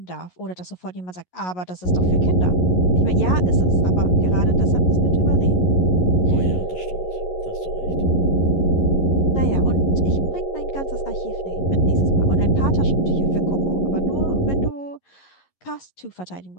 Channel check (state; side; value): late; right; 11 ms